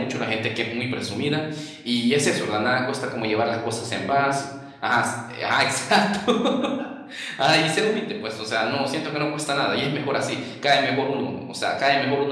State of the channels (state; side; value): identical; both; correlation 1.00